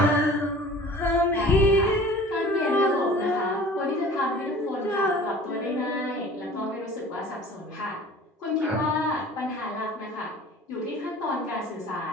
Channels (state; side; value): normal; both; correlation 0.45